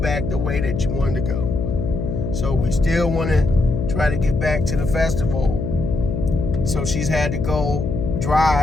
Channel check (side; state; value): left; noise; hum, 3 dB below the sound